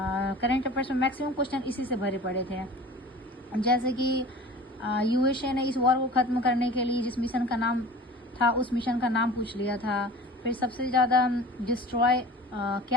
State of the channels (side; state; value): both; normal; correlation 0.40